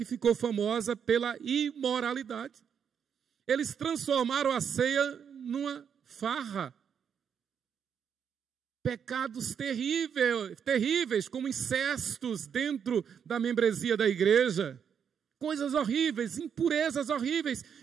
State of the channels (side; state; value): left; quieter; 7.6 dB